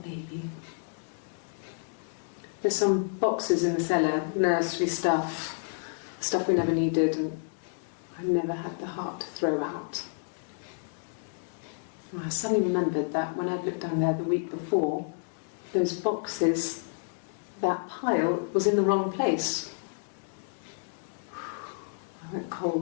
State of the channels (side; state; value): right; silent; digital silence